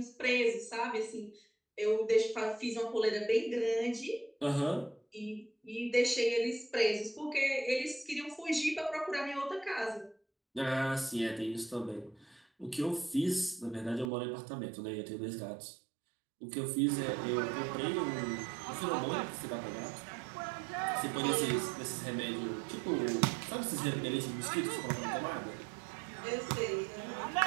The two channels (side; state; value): left; drops out; at 14.1 s